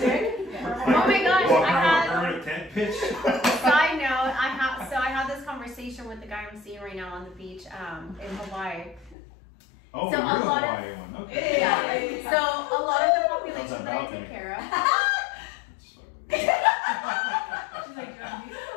gosh, Well, I had. permanent tent pitch. Side note, I had this conversation with the guy I'm seeing right now on the beach in Hawaii. Oh, So you're a the lot of- Hawaii one. Okay. Yeah. So a lot of the How's population that that I balcony? take care of. It's fucking- She's like,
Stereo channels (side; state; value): right; drops out; at 9.2 s